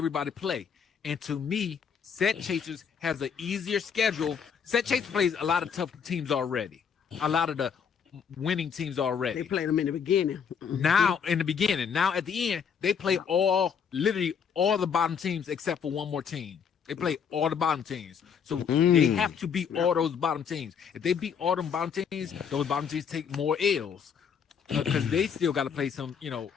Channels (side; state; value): right; quieter; 7.0 dB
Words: play, and to me, Set Chasers has an easier schedule. Set Chasers plays a lot of tough teams already. A lot of the winning teams already. They played them in the beginning. Now, in the beginning. Now, at the end, they play literally all the bottom teams except for one more team. They play all the bottom teams. So they have to beat all those bottom teams. If they beat all them bottom teams, those bottom teams take more L's because they still got to play some,